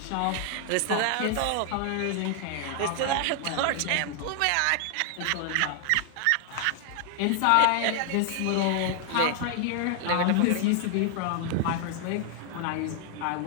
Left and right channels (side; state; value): both; different; correlation 0.00